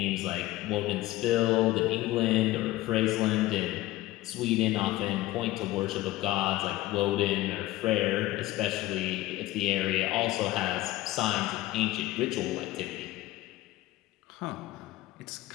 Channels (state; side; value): quieter; right; 17.0 dB